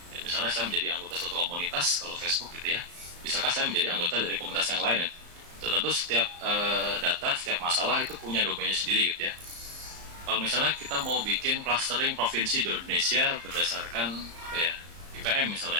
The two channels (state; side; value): late; left; 35 ms